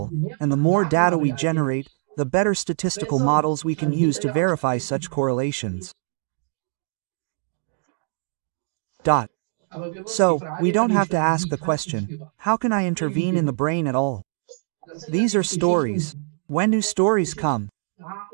and the more data we generate, the better statistical models we can use to verify such correlations. So, we don't have to ask the question, how can I intervene in the brain at all? These are stories. When do stories come?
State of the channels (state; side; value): silent; left; digital silence